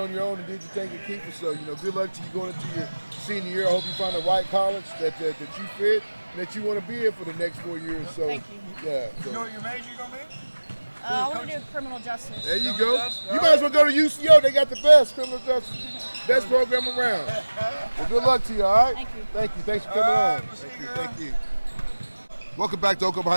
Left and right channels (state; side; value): inverted; both; correlation -1.00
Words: your own and did your thing at Kiefer. So, good luck to you going into your senior year. I hope you find the right college that you fit and that you want to be in for the next 4 years. So, Thank you. yeah. So. You know what your major going to be? I want to do criminal justice. There you go. You might as well go to UCO. They got the best criminal justice. Best program around. Well, good luck to you, all right? Thank you. Thank you. Thanks for coming on. Thank you. Welcome back to Oklahoma